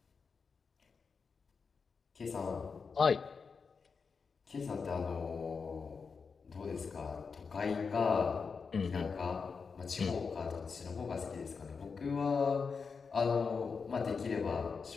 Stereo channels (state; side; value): quieter; right; 5.3 dB